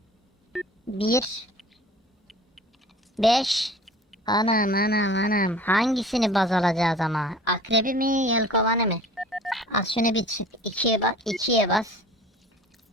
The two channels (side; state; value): both; normal; correlation 0.44